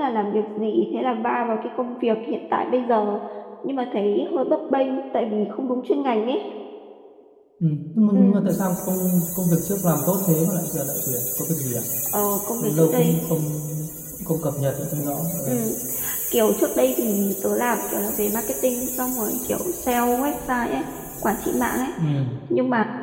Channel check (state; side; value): identical; both; correlation 1.00